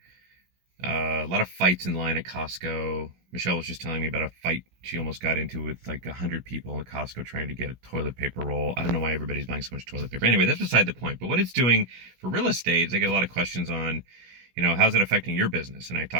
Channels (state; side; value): late; left; 16 ms